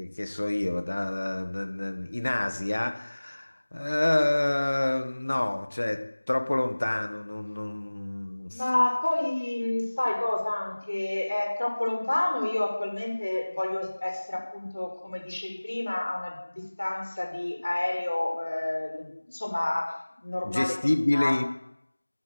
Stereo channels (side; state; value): both; inverted; correlation -1.00